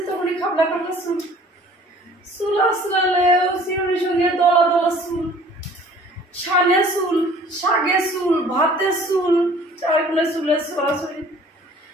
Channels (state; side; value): normal; both; correlation 0.52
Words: তখনই খাবলা খাবলা চুল, চুল আসলালেও চিরুনির সঙ্গে দলা দলা চুল, শানে চুল, শাগে চুল, ভাতে চুল, চারগুলো চুলের ছড়াছড়ি।